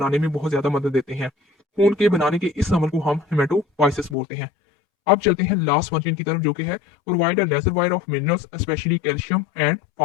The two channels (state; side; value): drops out; right; at 4.2 s